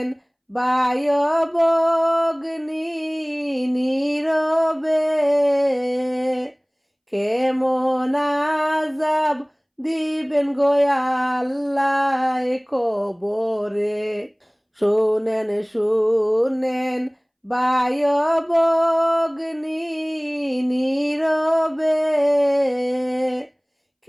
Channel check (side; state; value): both; identical; correlation 1.00